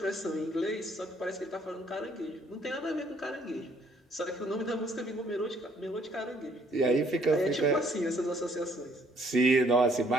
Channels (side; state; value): both; normal; correlation 0.65